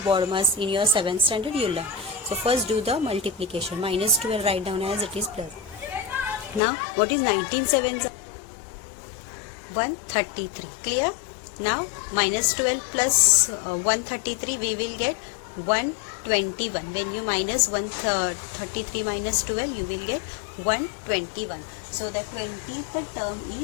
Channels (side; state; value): right; drops out; at 6.6 s